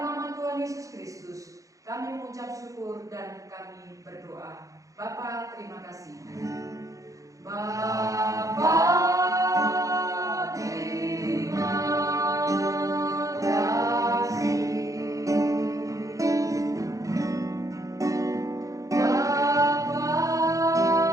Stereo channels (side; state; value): left; late; 0.16 ms